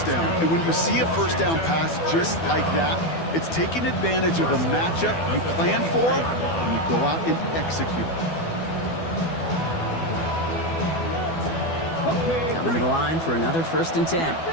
down. And when you see a 1st down pass just like that, it's taking advantage of a matchup you plan for and you go out and execute. Coming to the line for another 1st and 10.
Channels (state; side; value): late; right; 12 ms